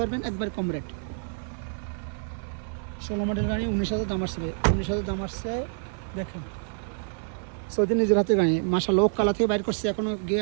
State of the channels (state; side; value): silent; left; digital silence